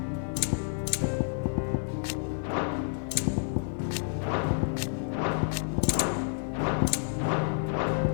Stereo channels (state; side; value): silent; right; digital silence